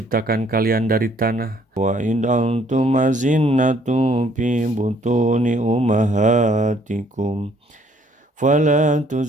kalian dari tanah. Wa in antum azinnatu fi butuni ummahatikum fala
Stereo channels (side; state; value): both; normal; correlation 0.63